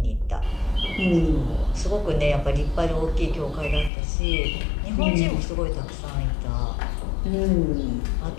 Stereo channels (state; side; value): drops out; right; at 3.9 s